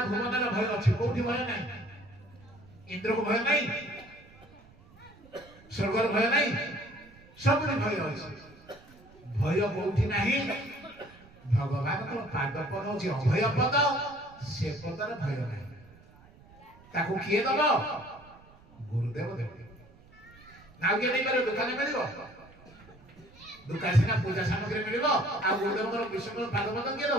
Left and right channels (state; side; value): noise; right; rumble, 24 dB below the sound